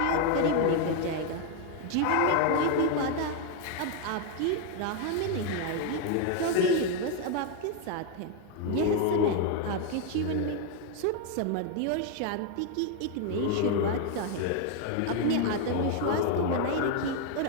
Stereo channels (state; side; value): different; both; correlation 0.01